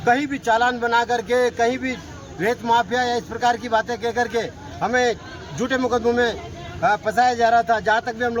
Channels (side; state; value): both; identical; correlation 1.00